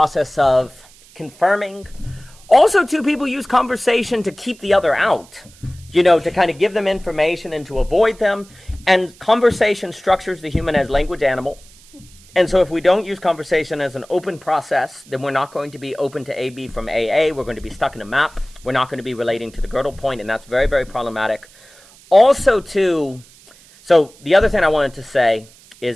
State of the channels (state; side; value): noise; right; hiss, 25 dB below the sound